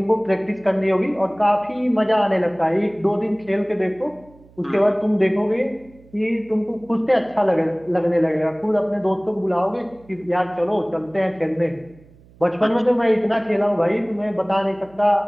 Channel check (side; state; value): right; noise; hum, 26 dB below the sound